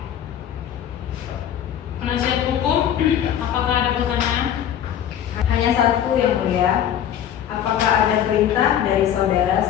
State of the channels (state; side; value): quieter; right; 10.1 dB